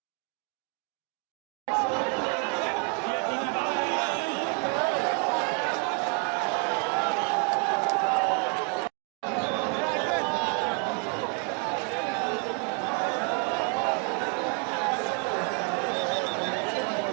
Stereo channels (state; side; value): quieter; left; 36.2 dB